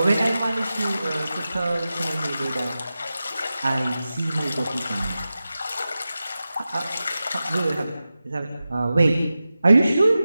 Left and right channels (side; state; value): both; inverted; correlation -0.94